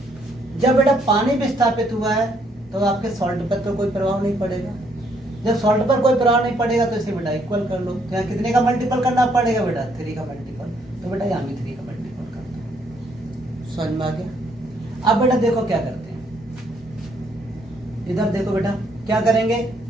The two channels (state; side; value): normal; both; correlation 0.70